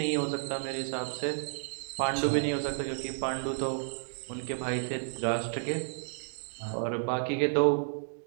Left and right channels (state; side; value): silent; left; digital silence